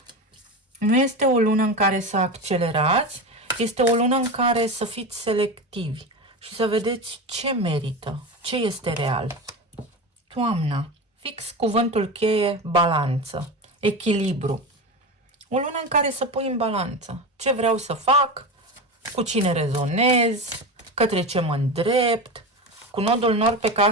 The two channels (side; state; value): both; normal; correlation 0.23